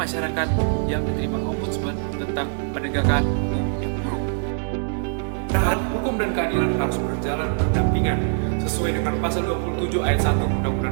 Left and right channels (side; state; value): left; silent; 63 dB below the other